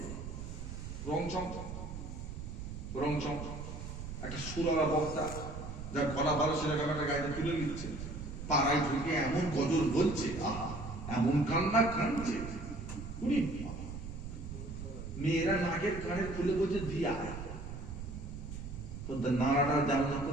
রংচং। একটা সুরালা বক্তা, যার গলা ভালো, সেরকম একটা গাড়িতে তুলে নিচ্ছে, পাড়ায় ঢুকে এমন গজল বলছে, আহা, এমন কান্না কাঁদছে, মেয়েরা নাকের কানের খুলে বলছে দিয়া, তো নাড়াটা যেমন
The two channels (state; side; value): noise; right; rumble, 8 dB below the sound